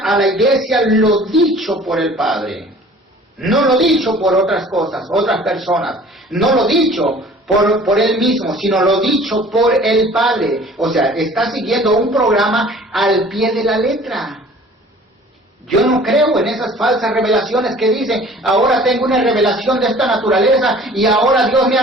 la iglesia lo dicho por el Padre. No lo dicho por otras cosas, otras personas. No lo dicho por Él mismo, sino lo dicho por el Padre. O sea, está siguiendo un programa al pie de la letra. Yo no creo en esas falsas revelaciones que dicen, ahora tengo una revelación de esta naturaleza y ahora Dios me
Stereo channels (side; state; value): both; normal; correlation 0.49